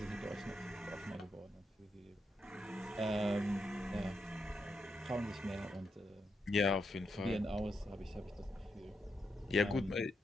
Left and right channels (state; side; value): normal; both; correlation 0.82